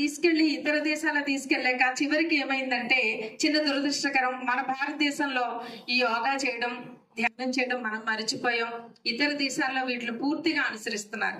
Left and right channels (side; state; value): both; identical; correlation 1.00